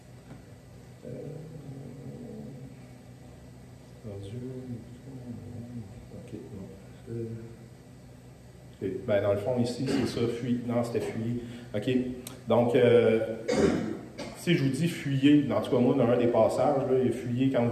ben, dans le fond, ici, c'est ça, fuir. Non, c'était fuyer. OK. Donc, si je vous dis fuyer, en tout cas, moi, dans un des passages, là, il y a fuyer quand vous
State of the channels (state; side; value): identical; both; correlation 1.00